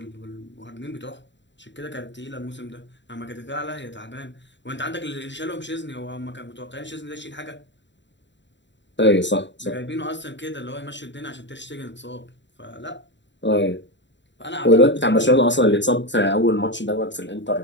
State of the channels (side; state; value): right; late; 0.53 ms